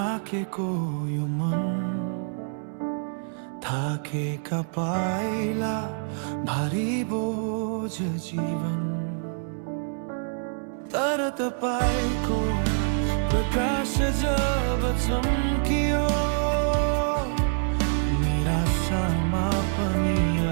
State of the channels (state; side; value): silent; left; 61 dB below the other